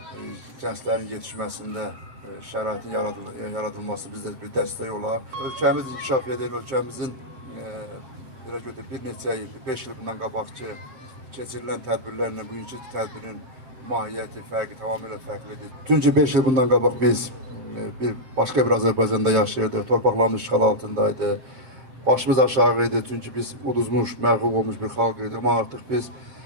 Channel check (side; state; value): left; late; 7.7 ms